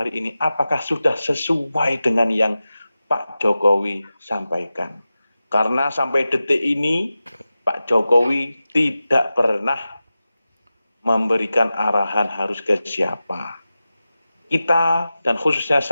ini, apakah sudah sesuai dengan yang Pak Jokowi sampaikan? Karena sampai detik ini, Pak Jokowi tidak pernah memberikan arahan harus ke siapa. Kita dan khususnya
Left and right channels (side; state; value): both; inverted; correlation -0.94